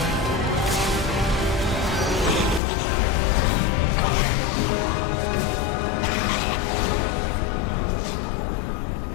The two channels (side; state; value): right; drops out; at 2.6 s